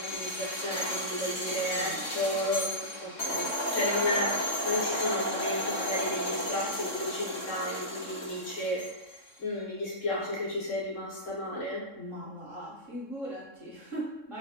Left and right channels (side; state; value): right; late; 3.7 ms